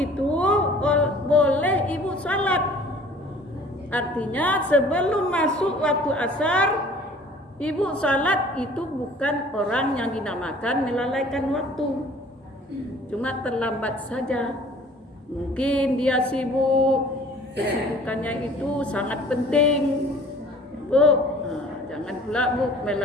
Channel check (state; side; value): normal; both; correlation 0.50